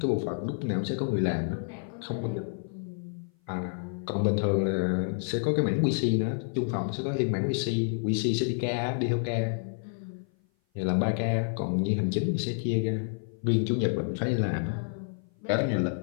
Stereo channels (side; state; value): right; silent; 56 dB below the other